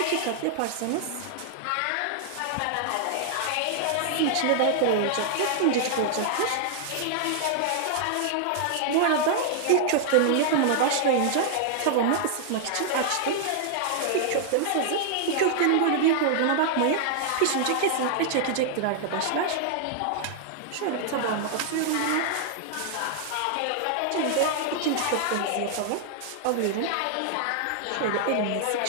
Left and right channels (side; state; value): both; different; correlation -0.01